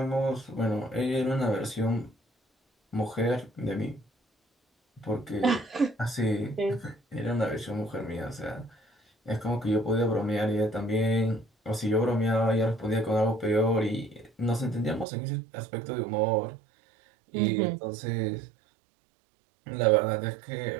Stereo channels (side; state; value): left; drops out; at 15.1 s